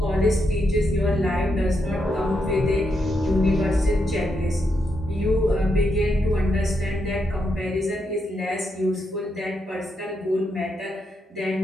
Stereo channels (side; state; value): both; normal; correlation 0.82